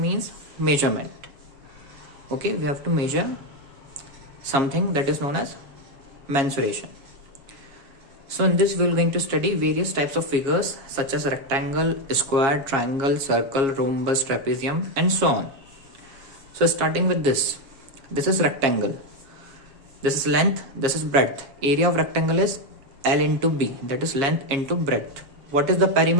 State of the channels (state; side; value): late; left; 7.3 ms